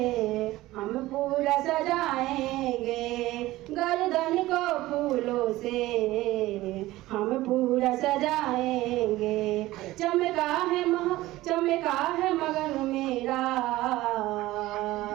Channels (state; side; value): quieter; left; 17.3 dB